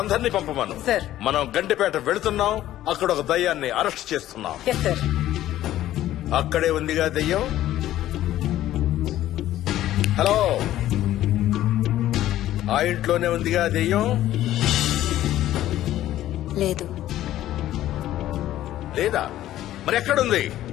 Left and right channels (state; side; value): quieter; right; 13.5 dB